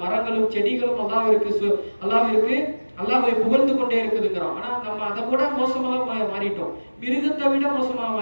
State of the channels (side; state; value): both; inverted; correlation -1.00